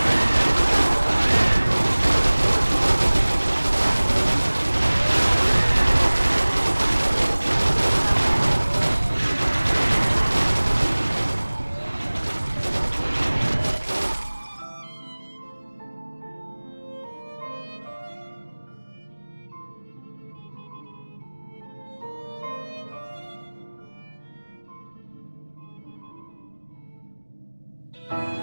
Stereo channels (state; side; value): inverted; both; correlation -1.00